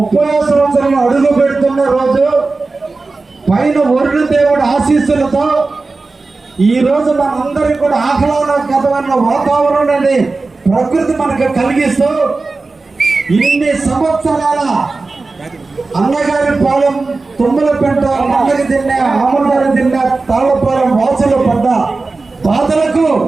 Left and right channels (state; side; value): quieter; left; 3.7 dB